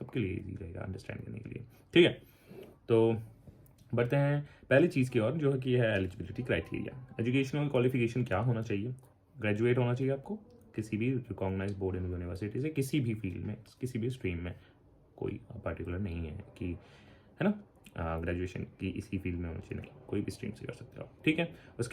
लिए इजी रहेगा अंडरस्टैंड करने के लिए, ठीक है। तो बढ़ते हैं पहली चीज़ की ओर, जो है कि है एलिजिबिलिटी क्राइटेरिया। एजुकेशनल क्वालिफिकेशन क्या होना चाहिए? ग्रेजुएट होना चाहिए आपको किसी भी रिकॉग्नाइज बोर्ड एंड यूनिवर्सिटी से, किसी भी फील्ड में, किसी भी स्ट्रीम में, कोई पर्टिकुलर नहीं है कि है ना ग्रेजुएशन की इसी फील्ड में होना चाहिए, नहीं, कोई भी स्ट्रीम से कर सकते हो आप, ठीक है।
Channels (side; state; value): both; identical; correlation 1.00